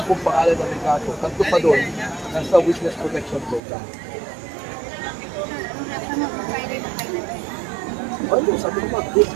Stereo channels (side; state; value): left; drops out; at 3.6 s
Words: kong pangalan ng may kaso. Tatlo pa doon, nasa witness protection program. Ano, sabi ko ba, good